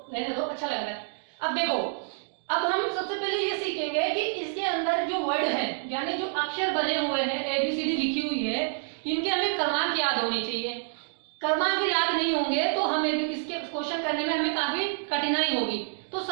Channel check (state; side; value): silent; left; digital silence